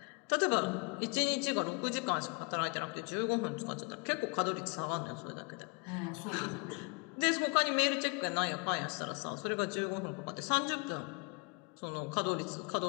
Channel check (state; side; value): quieter; right; 32.1 dB